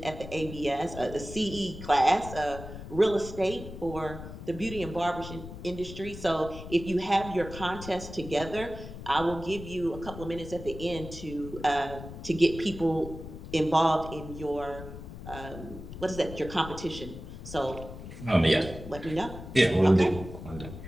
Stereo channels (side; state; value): left; noise; rumble, 12 dB below the sound